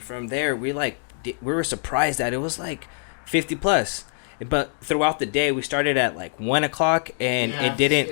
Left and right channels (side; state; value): right; silent; digital silence